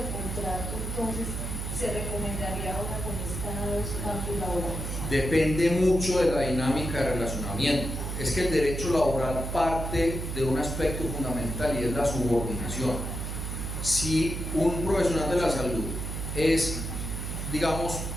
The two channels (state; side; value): noise; right; hum, 5 dB below the sound